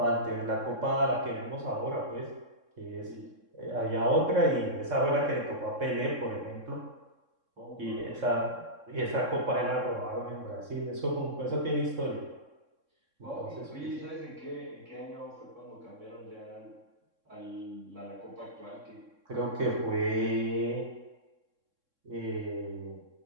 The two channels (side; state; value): left; late; 3.6 ms